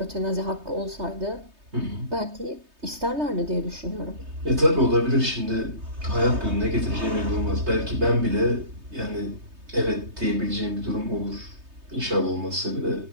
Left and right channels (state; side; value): late; left; 3.2 ms